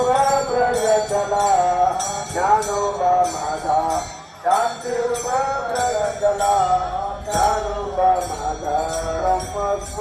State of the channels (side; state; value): both; identical; correlation 1.00